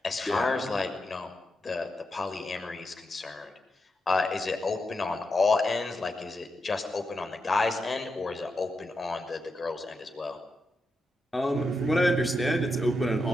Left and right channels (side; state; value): both; normal; correlation 0.86